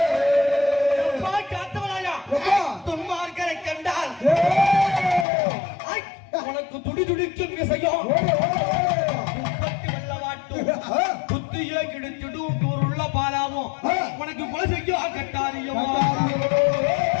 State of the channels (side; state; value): right; drops out; at 5.2 s